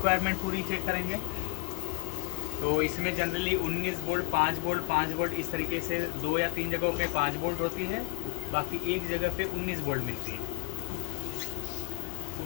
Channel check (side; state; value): right; quieter; 32.3 dB